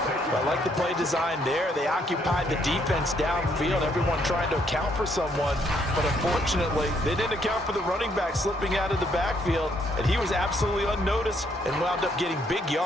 I like the play design there. They occupied the defense downfield, everyone trying to account for someone. But unfortunately, they didn't account for the running back slipping out of the backfield, and he was absolutely unnoticed and wound up getting big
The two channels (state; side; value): normal; both; correlation 0.71